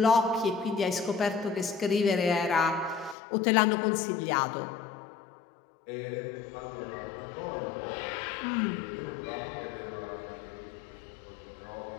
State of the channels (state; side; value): drops out; right; at 3.2 s